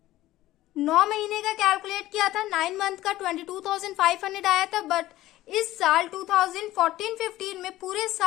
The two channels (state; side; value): quieter; right; 15.7 dB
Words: 9 महीने का कैलकुलेट किया था, 9 मंथ का 22,500 आया था, बट इस साल 2014-15 में पूरे